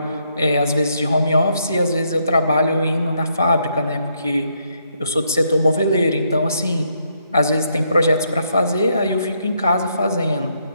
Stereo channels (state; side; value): inverted; both; correlation -0.75